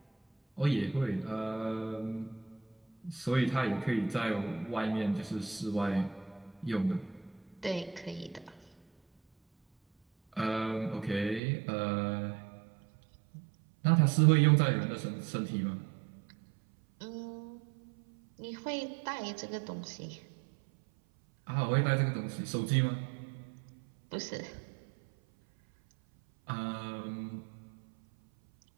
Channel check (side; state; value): left; drops out; at 11.4 s